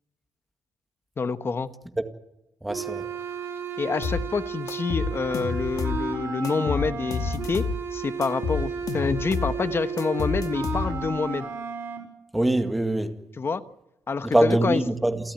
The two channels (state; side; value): normal; both; correlation 0.82